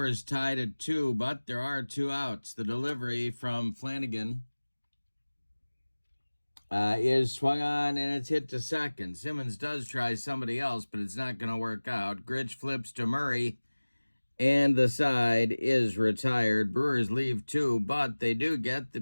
is tied at 2, but there are 2 outs. The delivery from Flanagan is swung on, and it's hit to second. Simmons does try somebody else, but it's not going to work out. Grich flips to Murray, and the side is retired. Brewers leave 2, but they do get the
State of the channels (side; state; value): both; inverted; correlation -1.00